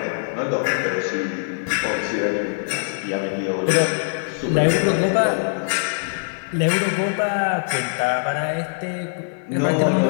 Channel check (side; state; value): right; silent; 64 dB below the other